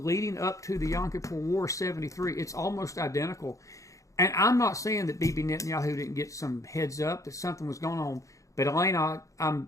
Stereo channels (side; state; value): right; late; 0.16 ms